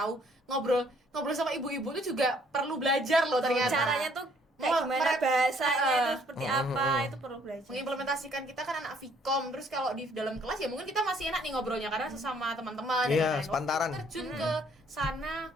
ngobrol sama ibu-ibu itu juga perlu belajar loh ternyata. Caranya tuh kayak gimana bahasanya itu seperti apa, itu perlu belajar. Mengimplementasikan, kita kan anak Vkom, terus kalau di dalam kelas ya mungkin kita masih enak nih ngobrolnya karena sesama teman-teman. Iya, dan lain-lain. sepantaran. Waktu terjun ke sana,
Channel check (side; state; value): both; normal; correlation 0.63